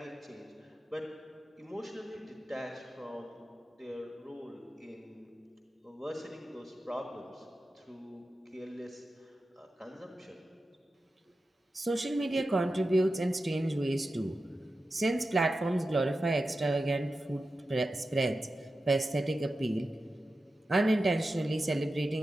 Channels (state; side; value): normal; both; correlation 0.92